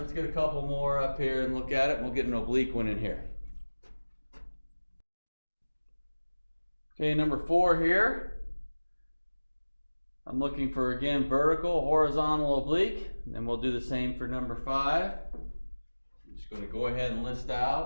get a couple more up here and look at it, and we'll get an oblique one in here. Okay, number 4 here. I'm looking for, again, vertical, horizontal, oblique, and then we'll do the same for number 5. I'm just going to go ahead and list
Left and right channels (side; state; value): both; inverted; correlation -1.00